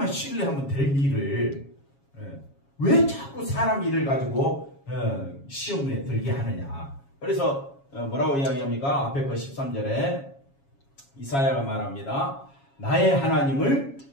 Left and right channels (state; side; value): late; right; 7.3 ms